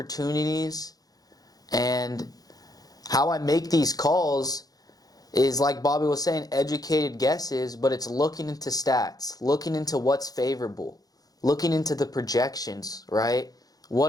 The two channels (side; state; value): right; late; 0.18 ms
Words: And how I make these calls is, like Bobby was saying, educated guesses, but it's looking into stats, looking into what's favorable, looking into the projections, right?